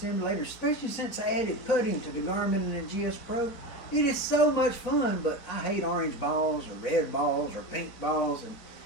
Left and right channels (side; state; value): right; late; 4.4 ms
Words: especially since I added putting to the Garmin and the GSPro. It is so much fun, but I hate orange balls or red balls or pink balls, and